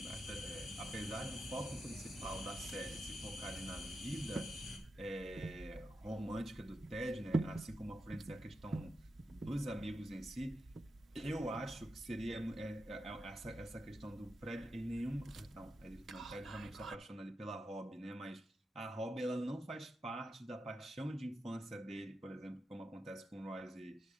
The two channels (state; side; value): normal; both; correlation 0.87